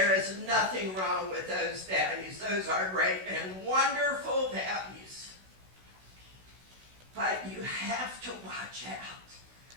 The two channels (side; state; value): left; late; 16 ms